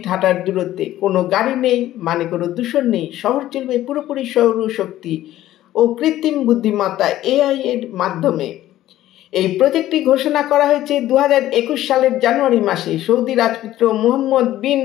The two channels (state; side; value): quieter; right; 14.0 dB